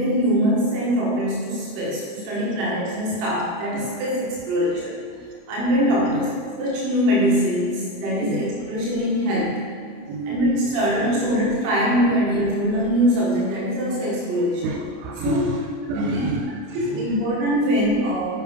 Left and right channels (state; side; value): late; left; 28 ms